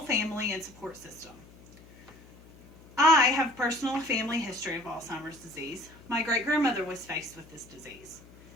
family and support system. I have personal family history of Alzheimer's disease. My great-grandmother was faced with this disease.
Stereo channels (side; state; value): left; noise; hum, 22 dB below the sound